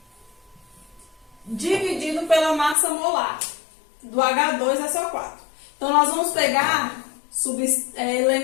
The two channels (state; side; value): drops out; right; at 2.8 s